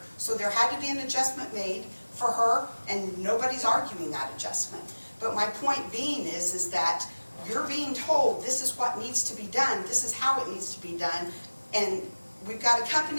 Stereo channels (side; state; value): both; inverted; correlation -1.00